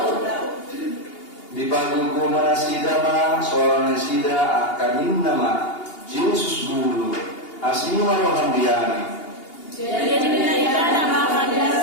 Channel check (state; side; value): late; right; 2.8 ms